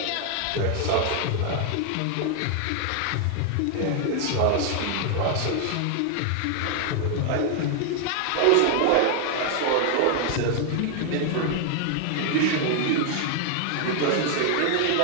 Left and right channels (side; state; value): both; different; correlation 0.00